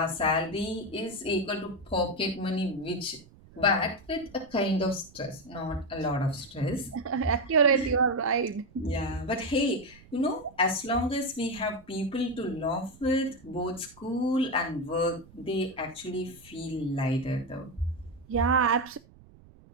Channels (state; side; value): noise; right; rumble, 24 dB below the sound